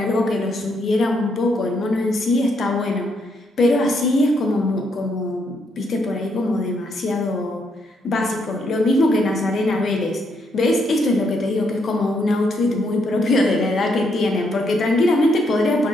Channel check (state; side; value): normal; both; correlation 0.75